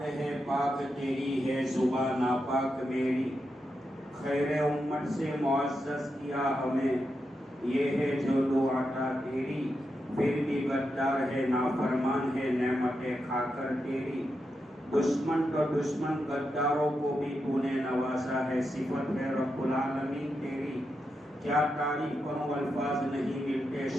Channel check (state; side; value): normal; both; correlation 0.86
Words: ہے پاک تیری ہے صبح ناپاک میری. خیر امت سے معزز کیا ہمیں، یہ ہے جو دو عطا تیری. پھر بھی غدار ہے نافرمان ہے نعمتیں کھا کر تیری. دشمن تو دشمن غداروں کو بھی تو نے نوازا ہے، صفت ہے رب العالمین تیری. کیا تعریف کروں الفاظ نہیں ملتے